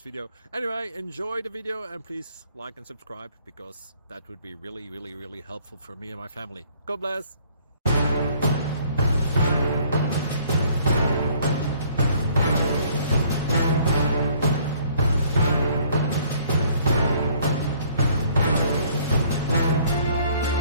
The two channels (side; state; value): both; inverted; correlation -0.60